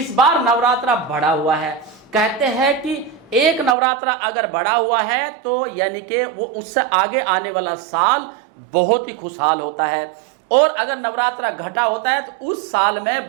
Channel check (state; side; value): drops out; left; at 3.8 s